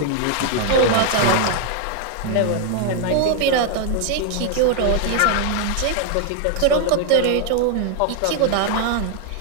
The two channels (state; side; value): different; both; correlation 0.00